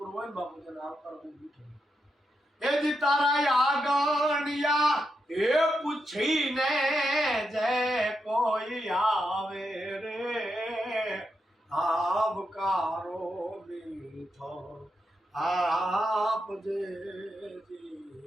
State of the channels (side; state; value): both; normal; correlation 0.85